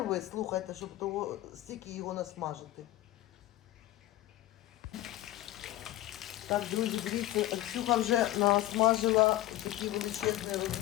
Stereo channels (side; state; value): right; quieter; 15.5 dB